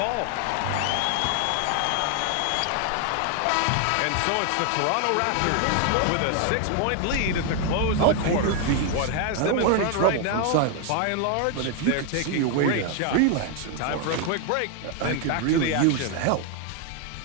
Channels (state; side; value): different; both; correlation 0.00